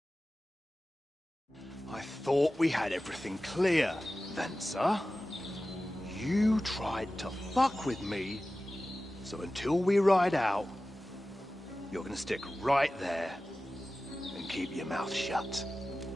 I thought we had everything clear, Venser. You tried to fuck with me, so until we ride out, you're gonna stick right there and keep your mouth shut.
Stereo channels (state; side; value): normal; both; correlation 0.95